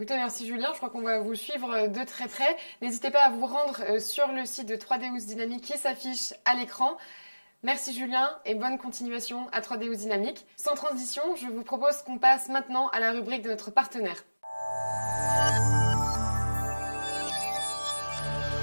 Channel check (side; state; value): both; inverted; correlation -1.00